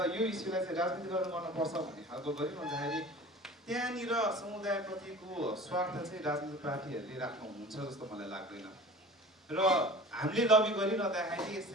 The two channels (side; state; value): both; normal; correlation 0.40